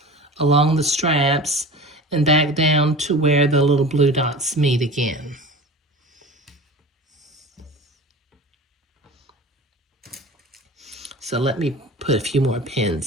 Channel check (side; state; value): both; normal; correlation 0.36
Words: along the straps, and back down to where the little blue dots meet again. So let me put a few more